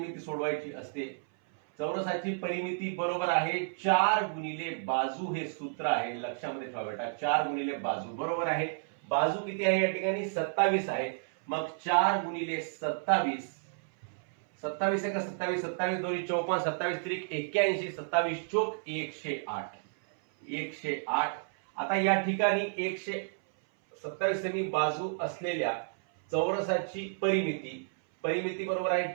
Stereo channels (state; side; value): silent; left; 57 dB below the other